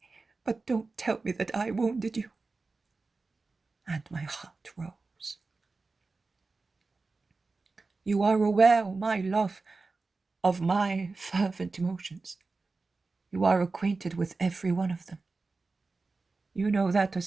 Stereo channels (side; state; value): left; quieter; 3.8 dB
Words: but don't tell me that I wounded you." And my heart rose. You are aware, my love, of my fervent emotions. You are acquainted with every one of them. You know that a